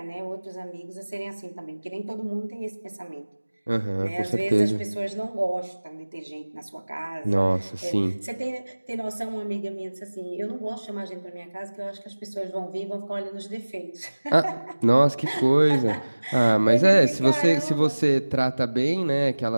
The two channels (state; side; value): inverted; both; correlation -1.00